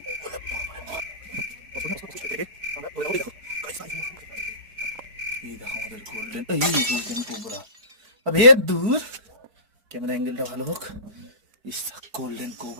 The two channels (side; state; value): left; late; 4.9 ms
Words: এই দেখো আমাদের গোল্ডেন কোবরা। আবে দূর, ক্যামেরা অ্যাঙ্গেলটা ভালো হোক। ইস গোল্ডেন